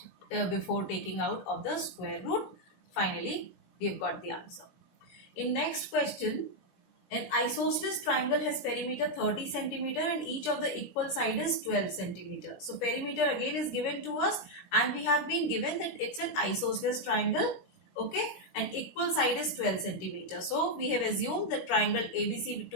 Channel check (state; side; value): late; right; 16 ms